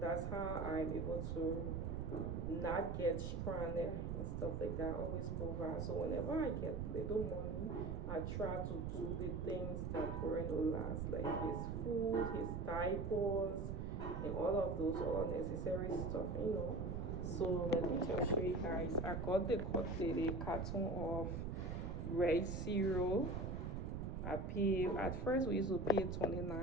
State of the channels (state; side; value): noise; right; rumble, 4 dB below the sound